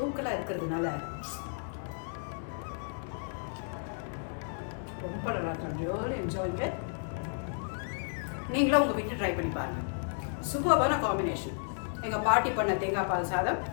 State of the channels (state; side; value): silent; right; digital silence